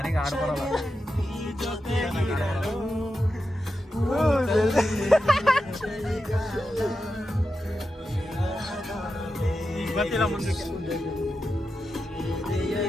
ಆಡ್ ಬರಲ್ಲ. ಗೊತ್ತಿಲ್ಲ ಮುಂದಕ್ಕೆ.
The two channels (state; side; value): normal; both; correlation 0.89